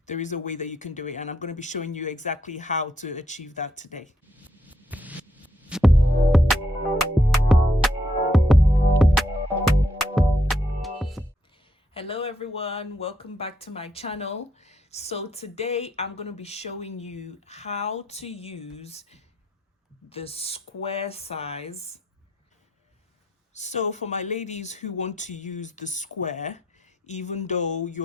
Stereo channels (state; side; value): normal; both; correlation 0.76